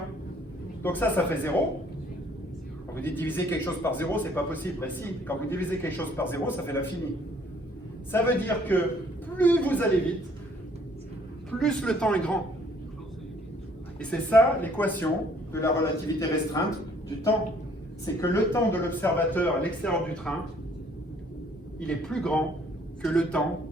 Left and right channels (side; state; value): both; normal; correlation 0.61